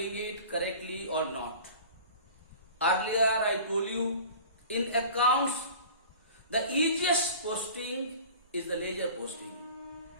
it correctly or not. Earlier I told you, in accounts the easiest posting is the ledger posting.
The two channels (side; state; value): both; inverted; correlation -0.42